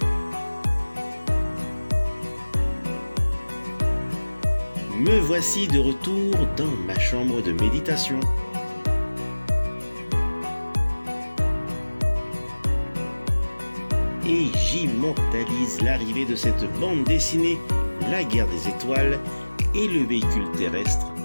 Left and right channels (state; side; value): inverted; both; correlation -1.00